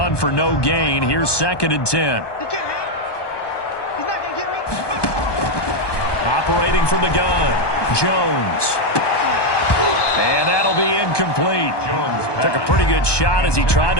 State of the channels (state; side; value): late; right; 1.2 ms